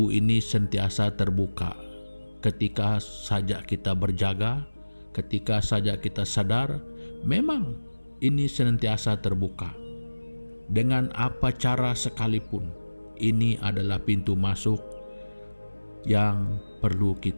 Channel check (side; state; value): both; inverted; correlation -1.00